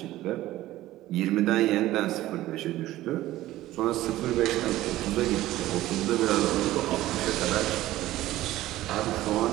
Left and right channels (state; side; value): quieter; left; 15.6 dB